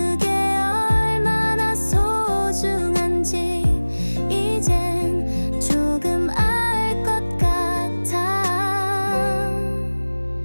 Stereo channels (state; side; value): inverted; both; correlation -1.00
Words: 얼마나 소중한지 이젠 조금 알 것 같아.